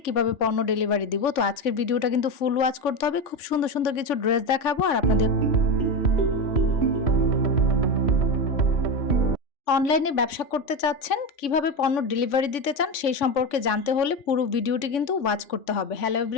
কিভাবে পণ্য ডেলিভারি দিব। তো আজকের ভিডিওটা কিন্তু ফুল ওয়াচ করতে হবে, খুব সুন্দর সুন্দর কিছু ড্রেস দেখাবো আর আপনাদের অনলাইনে ব্যবসা করতে চাচ্ছেন, কিভাবে পণ্য ডেলিভারি দিতে চান সেই সম্পর্কে জানতে হলে পুরো ভিডিওটি কিন্তু ওয়াচ করতে হবে। হ্যালো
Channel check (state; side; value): late; right; 3.5 ms